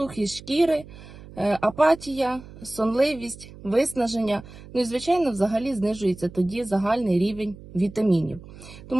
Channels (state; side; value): noise; right; hum, 18 dB below the sound